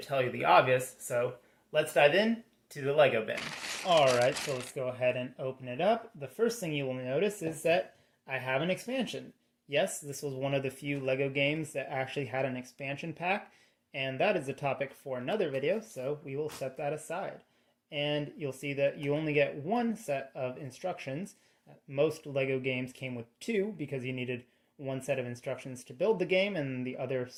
tell you the obvious, so let's dive in to the Lego bin. Alright, so let's go ahead and open it up. The first thing you will notice is that I have an expansion. Yes, this was one of the few Lego games that actually had an expansion pack, and that is a topic for another video, so we will set that aside. And you'll see that you only get one set of instructions. Most Lego games came with two because you needed one set of instructions to build the game and the other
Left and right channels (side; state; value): both; identical; correlation 1.00